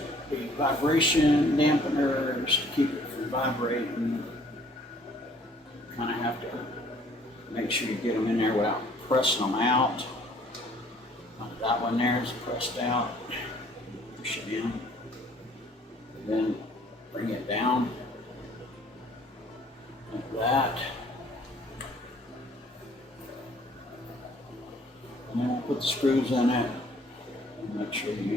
be vibration dampeners to keep it from vibrating. You kind of have to make sure you get them in there without pressing them out. That one there is pressed out. Push it in. And then bring it down like that. And then we'll put the screws in it and make sure you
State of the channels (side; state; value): both; normal; correlation 0.58